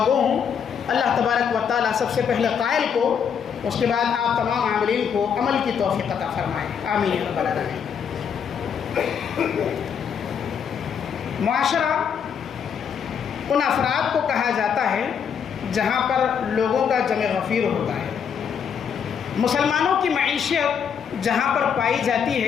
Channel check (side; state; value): right; quieter; 7.4 dB